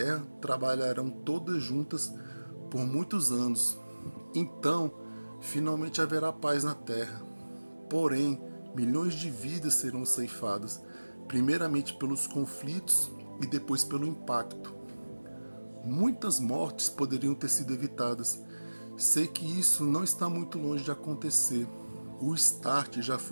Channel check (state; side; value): inverted; both; correlation -1.00